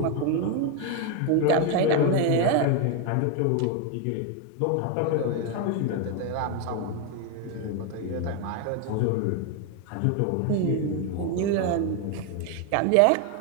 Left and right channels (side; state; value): both; different; correlation 0.01